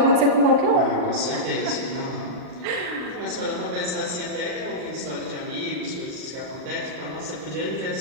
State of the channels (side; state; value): left; late; 39 ms